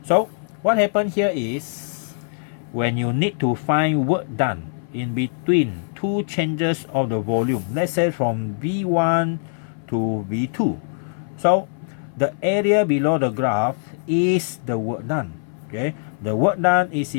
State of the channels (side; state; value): right; silent; 58 dB below the other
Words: so what happened here is when you need to find work done in between two changes of the volume, let's say from V1 to V2. So the area below the graph is the work done. Okay, the work done is